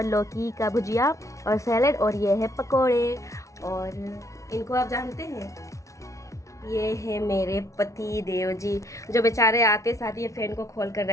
लौकी का भुजिया और सैलेड। और ये है पकोड़े। और इनको आप जानते हैं, ये है मेरे पति देव जी, जो बेचारे आते साथ ये फ़ैन को खोल कर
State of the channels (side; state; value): right; late; 0.15 ms